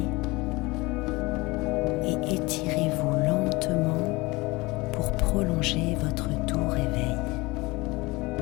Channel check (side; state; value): right; quieter; 23.0 dB